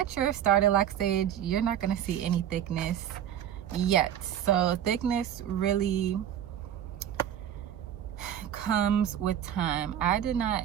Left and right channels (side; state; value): left; quieter; 10.2 dB